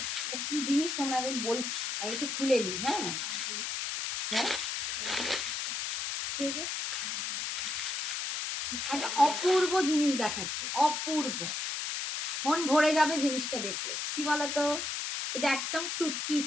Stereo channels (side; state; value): left; noise; hiss, 2 dB below the sound